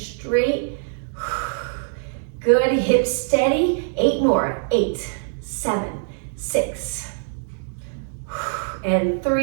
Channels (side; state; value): left; silent; digital silence